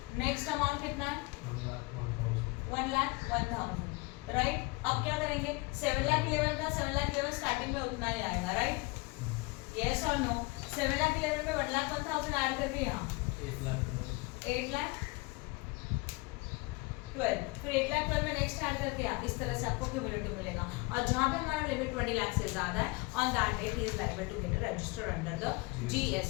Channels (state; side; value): quieter; right; 25.6 dB